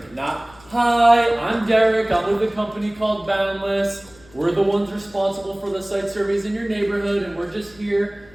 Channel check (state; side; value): noise; left; hum, 25 dB below the sound